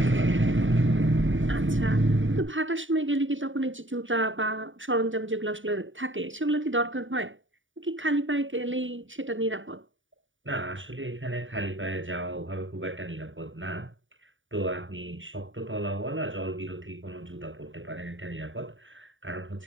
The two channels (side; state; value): left; late; 0.57 ms